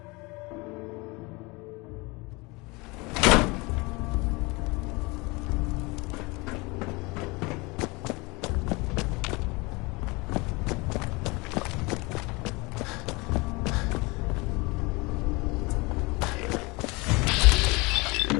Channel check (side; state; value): right; quieter; 25.7 dB